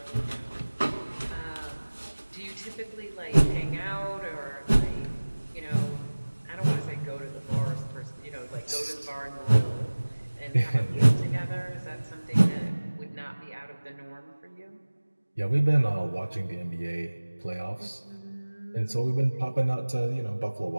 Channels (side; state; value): both; inverted; correlation -1.00